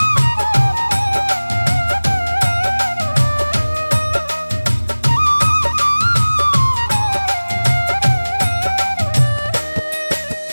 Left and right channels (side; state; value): both; inverted; correlation -1.00